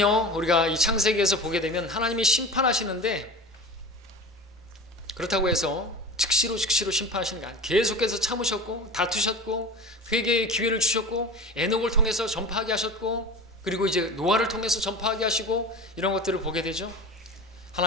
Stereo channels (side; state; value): both; normal; correlation 0.32